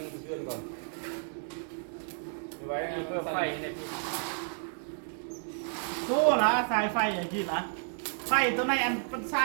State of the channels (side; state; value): left; silent; 57 dB below the other